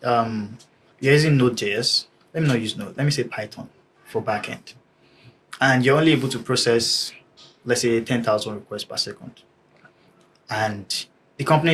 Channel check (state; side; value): identical; both; correlation 1.00